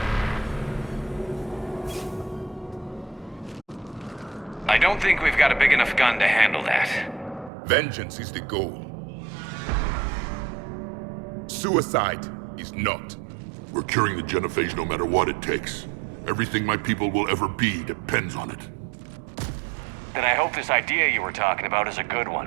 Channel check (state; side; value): drops out; left; at 7.5 s